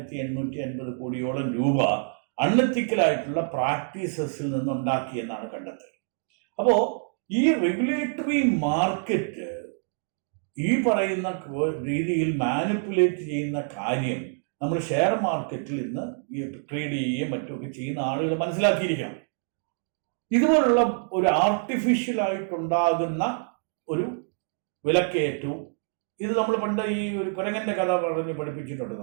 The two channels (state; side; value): silent; left; digital silence